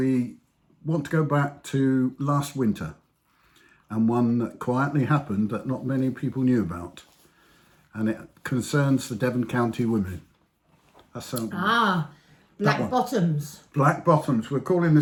want to go back to last winter, and one that quietly happened that not many people knew about. And it concerns the Devon County women. That's Black Bottoms. Black Bottoms. We're calling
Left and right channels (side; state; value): both; identical; correlation 1.00